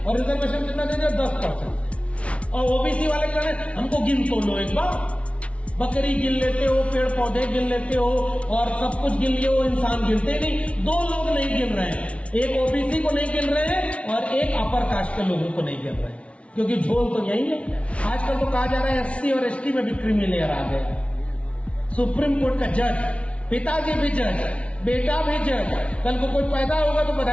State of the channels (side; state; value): right; late; 0.062 ms